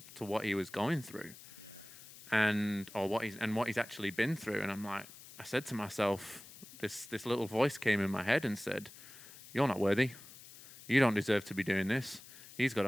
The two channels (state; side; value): noise; left; hiss, 18 dB below the sound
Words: what he was going through. Yeah. And what he's actually been through. And I said to myself, this little voice came in my head and said, "You're not worthy. You don't deserve to be doing this. He's got